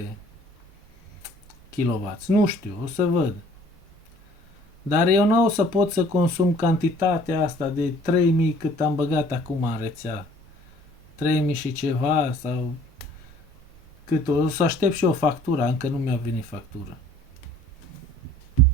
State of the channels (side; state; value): both; normal; correlation 0.54